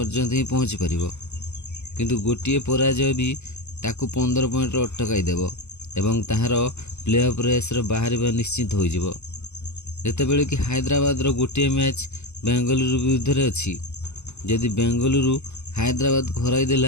ही पहुँची पारिबो, किंतु गोटिए पराजय भी ताकू 15 पॉइंट रे अटकाई देबो एवं ताहार प्ले ऑफ रेस रे बाहरिबा निश्चित हो जिवो। जेतेबेले कि हैदराबाद रो गोटिए मैच बेंगलुरु विरुद्ध रे अछि। यदि बेंगलुरु हैदराबाद हराई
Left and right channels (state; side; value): late; right; 0.82 ms